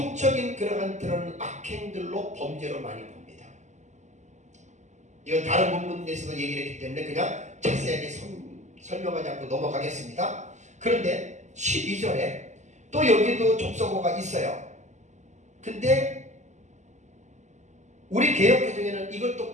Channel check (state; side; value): late; left; 0.34 ms